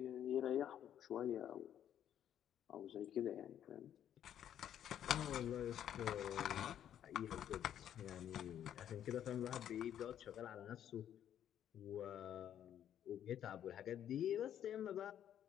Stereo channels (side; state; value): right; quieter; 10.3 dB